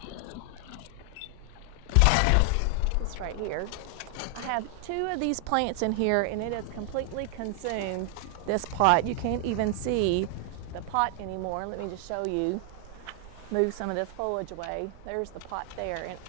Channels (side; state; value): both; different; correlation 0.00